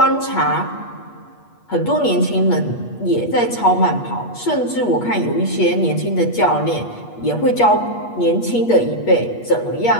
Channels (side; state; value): right; late; 8.4 ms